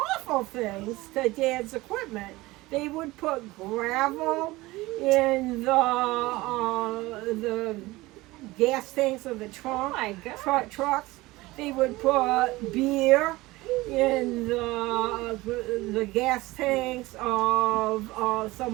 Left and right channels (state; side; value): quieter; left; 20.0 dB